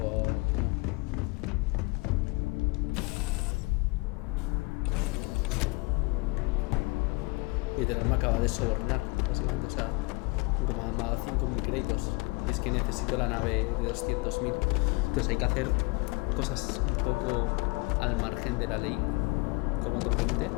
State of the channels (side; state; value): right; quieter; 27.1 dB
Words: que no. Literal me acaba de sobornar, básicamente, o sea, como me ha dado 5.000 créditos. Y es que necesito la nave de 200.000. Entonces hay que hacer cosas un poco al margen de la ley, como otra gente.